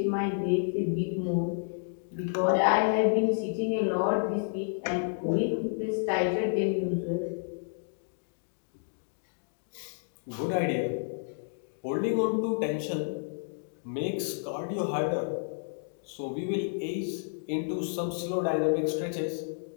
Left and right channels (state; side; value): silent; right; digital silence